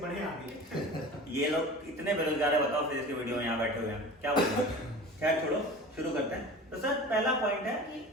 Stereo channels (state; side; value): normal; both; correlation 0.37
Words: आगे। ये लोग इतने बेरोजगार है, बताओ फिजिक्स के वीडियो में यहाँ बैठे हुए हैं, क्या बोलते हैं। खैर छोड़ो, शुरू करते हैं। तो सर पहला पॉइंट है